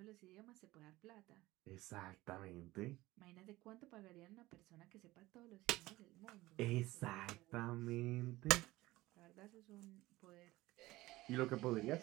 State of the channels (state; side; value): quieter; left; 18.4 dB